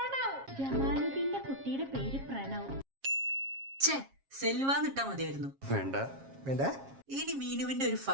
ജമാലുദ്ദീന്റെ കുട്ടിയുടെ പേര് പ്രണവ്. ഛേ, സെൽവാന്ന് ഇട്ടാ മതിയായിരുന്നു. വേണ്ട. ഇനി മീനുവിന്റെ ഒരു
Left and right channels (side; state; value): left; late; 7.4 ms